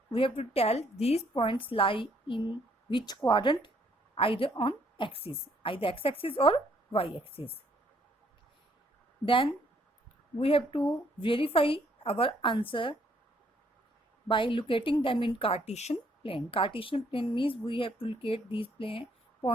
We have to tell these points lie in which quadrant, either on axis, either x-axis or y-axis. Then we have to verify our answer by locating them in Cartesian plane. Cartesian plane means we have to locate these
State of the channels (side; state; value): both; normal; correlation 0.67